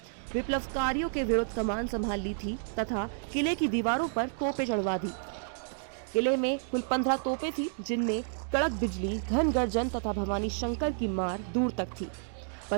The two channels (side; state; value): left; silent; digital silence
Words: विप्लवकारियों के विरुद्ध कमान संभाल ली थी तथा किले की दीवारों पर तोपें चढ़वा दी। किले में कुल 15 तोपें थी, जिनमें कड़क बिजली, घन गर्जन तथा भवानी शंकर की मार दूर तक थी।